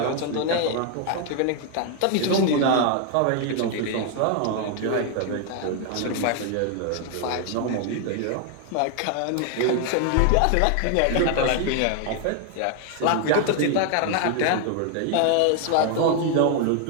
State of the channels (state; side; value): different; both; correlation 0.00